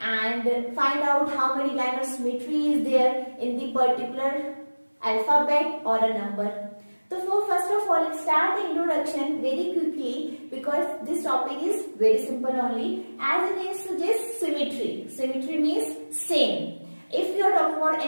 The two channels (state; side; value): inverted; both; correlation -1.00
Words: find out how many line of symmetry is there in the particular alphabet or a number. So first of all, let's start the introduction very quickly because this topic is very simple only. As it is suggests symmetry. Symmetry means same. If you are talking about